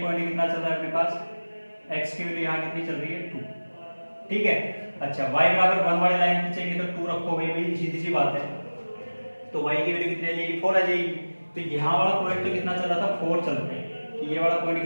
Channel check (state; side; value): inverted; both; correlation -1.00